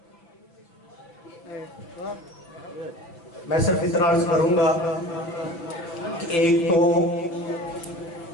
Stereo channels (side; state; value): right; late; 5.8 ms